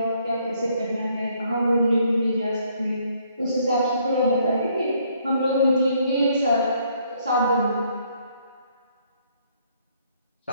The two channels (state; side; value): inverted; both; correlation -0.67